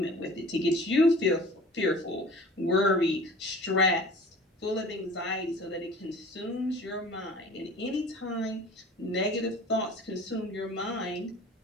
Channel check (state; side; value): normal; both; correlation 0.44